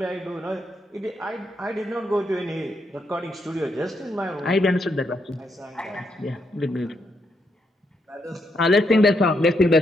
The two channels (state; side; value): normal; both; correlation 0.79